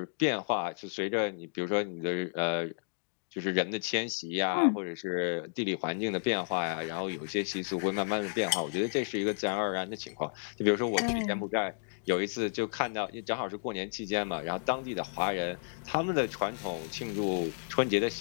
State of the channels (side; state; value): right; silent; digital silence